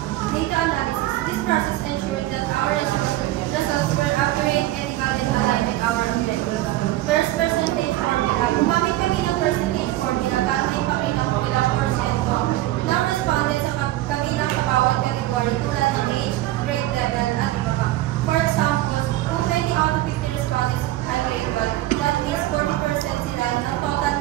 Data analysis. This process ensures that our results were accurate, ethical, and aligned with our objectives. First, percentage formula. Gumamit kami ng percentage formula para maipakita kung ilang porsyento ng respondents sa kabilang bawat category tulad ng age, grade level, at iba pa. For example, kung 20 out of 50 respondents ay grade 12, that means 40% sila ng total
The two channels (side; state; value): left; quieter; 15.7 dB